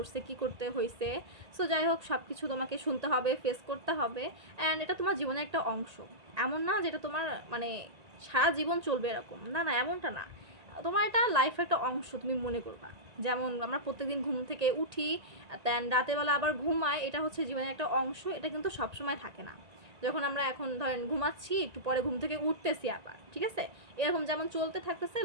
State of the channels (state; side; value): late; left; 1.8 ms